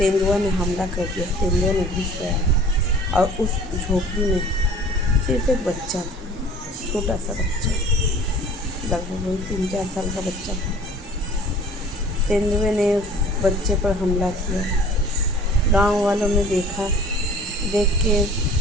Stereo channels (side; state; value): both; normal; correlation 0.48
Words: ने हमला कर दिया। तेंदुआ ने घुस गया और उस झोपड़ी में सिर्फ एक बच्चा था, छोटा सा बच्चा, लगभग वही 3-4 साल का बच्चा था। तेंदुए ने उस बच्चे पर हमला किया। गांव वालों ने देख के